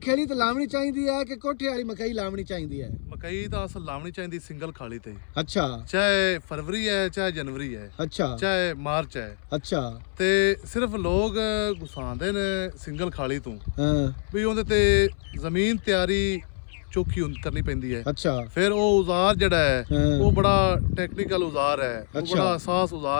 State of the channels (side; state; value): right; silent; 61 dB below the other